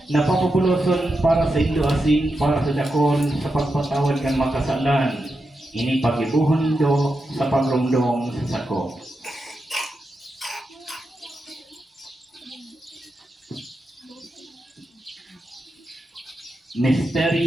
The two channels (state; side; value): normal; both; correlation 0.88